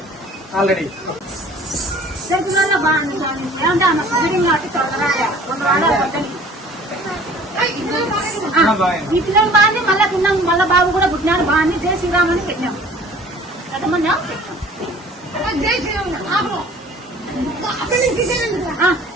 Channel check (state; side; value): normal; both; correlation 0.49